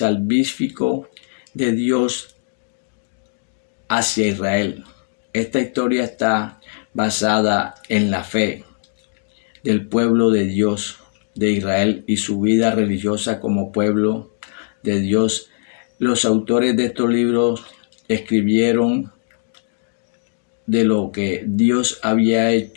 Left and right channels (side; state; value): right; silent; digital silence